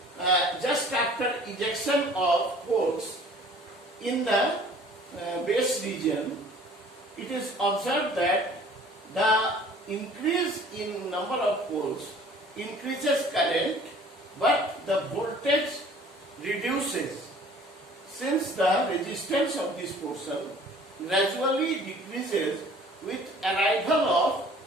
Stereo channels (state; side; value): normal; both; correlation 0.51